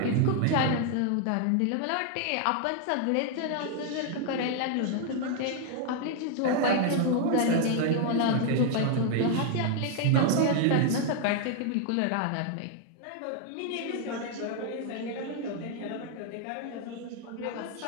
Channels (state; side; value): different; both; correlation 0.00